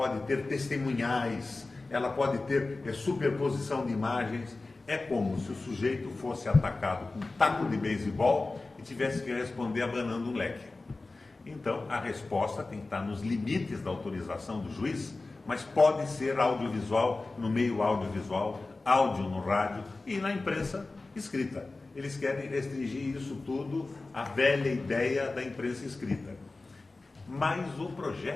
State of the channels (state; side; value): quieter; right; 3.4 dB